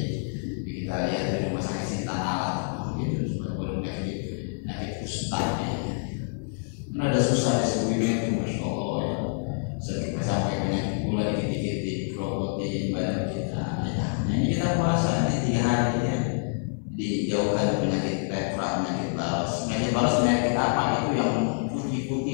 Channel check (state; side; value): silent; right; digital silence